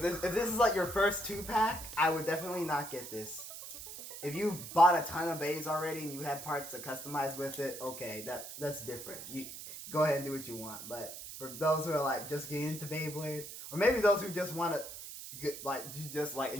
this is like your first 2-pack, I would definitely not get this. If you bought a ton of bays already and you had parts to customize with it, okay, that's different. You go ahead and do what you want. But for those who are like just getting into Beyblade, or maybe those who just want to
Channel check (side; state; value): right; noise; hiss, 11 dB below the sound